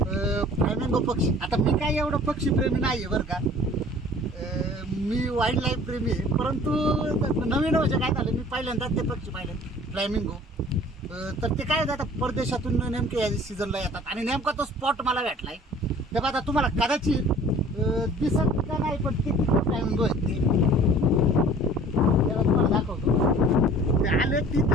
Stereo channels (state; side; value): normal; both; correlation 0.48